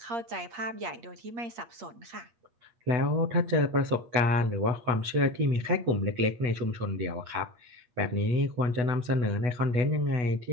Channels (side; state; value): left; late; 8.1 ms